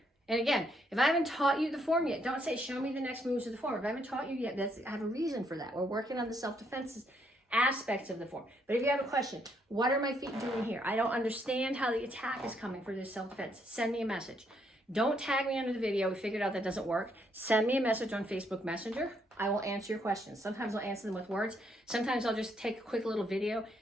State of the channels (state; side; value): normal; both; correlation 0.73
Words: and again, if I haven't taught you the form yet, don't say, show me the next moves of the form. If I haven't taught you yet, I have a reason for that. We're working on the self-defense aspects of the form. But if you have a question, what are my feet doing here? I don't understand how the attack is coming for this self-defense. Send me a message. Don't tag me under the video. We figured out that doesn't work. Send me a message on Facebook Messenger. I will answer your questions. Sometimes I'll answer them with words. Sometimes I'll just take a quick little video